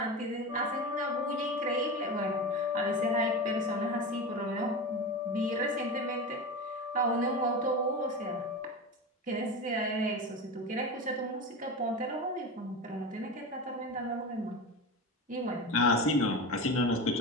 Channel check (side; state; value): both; normal; correlation 0.24